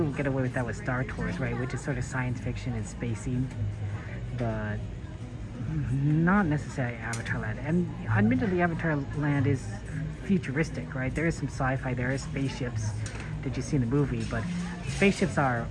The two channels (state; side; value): identical; both; correlation 1.00